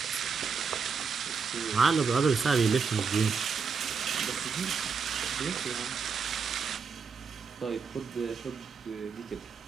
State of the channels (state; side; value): quieter; left; 5.6 dB